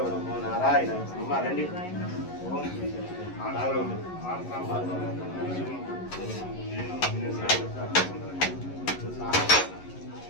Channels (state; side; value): late; right; 11 ms